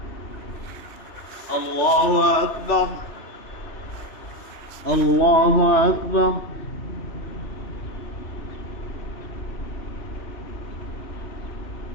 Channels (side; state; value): right; late; 3.3 ms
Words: الله أكبر. الله أكبر.